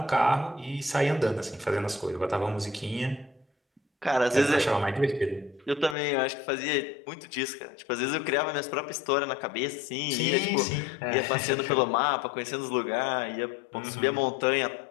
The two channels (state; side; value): drops out; right; at 6.0 s